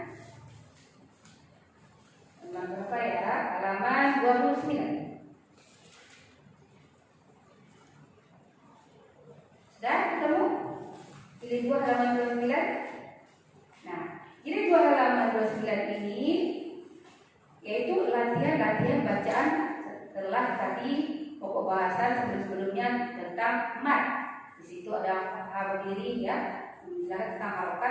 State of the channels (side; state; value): both; identical; correlation 1.00